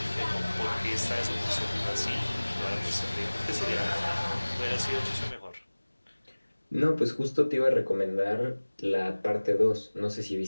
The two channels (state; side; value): inverted; both; correlation -1.00